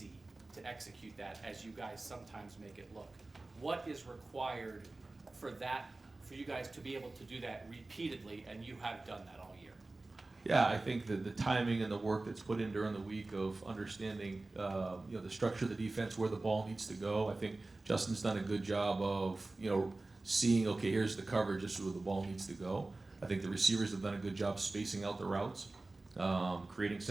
to execute that as you guys sometimes make it look. What is required for you guys to be able to do that repeatedly, and you have done that all year? Yeah, I think that the timing and the work that's put in during the week of understanding, the structure of the defense, where the ball needs to go. I think Justin's done a good job of, seeing, okay, here's the coverage, this is where the ball needs to go. I think the receivers have done a good job spacing out the routes, creating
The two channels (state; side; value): quieter; left; 3.1 dB